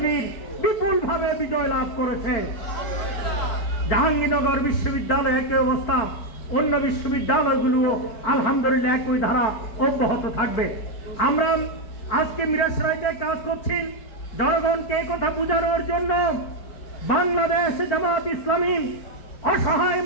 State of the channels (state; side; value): late; right; 4.5 ms